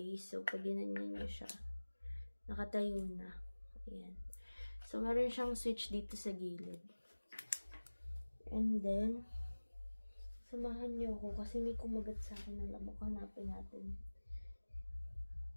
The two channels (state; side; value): inverted; both; correlation -1.00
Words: So pag ginanyan nyo siya, nakatayo na. Ayan. So, meron siyang switch dito sa gilid. And then, samahan niyo ako kasi may kumagat sa akin ng lamok. Hanapin natin.